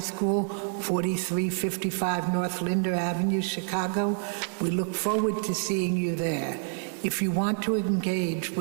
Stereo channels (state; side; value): silent; left; digital silence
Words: 4355 North Linder Avenue, Chicago. We look forward to seeing you there. If you want to engage